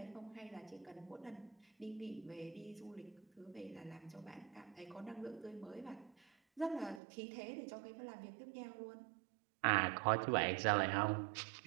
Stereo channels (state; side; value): drops out; left; at 7.0 s